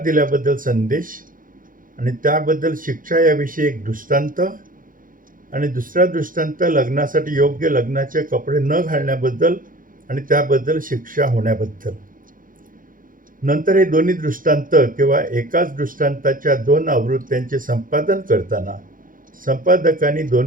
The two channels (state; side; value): late; left; 0.40 ms